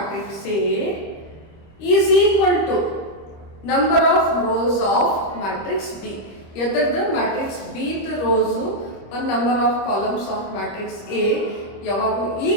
A is equal to number of rows of matrix B. ಎದರ್ದ matrix B ದ rows ಒಂದು number of columns of matrix A ಯಾವಾಗ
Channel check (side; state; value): right; late; 25 ms